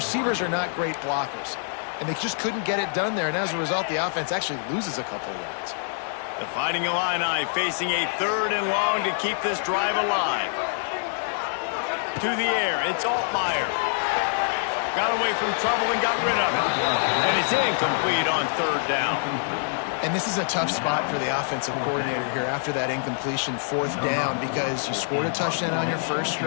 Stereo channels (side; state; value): right; silent; digital silence